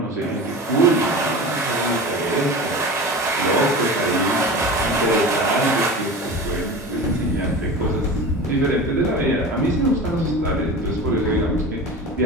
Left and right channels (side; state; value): both; normal; correlation 0.32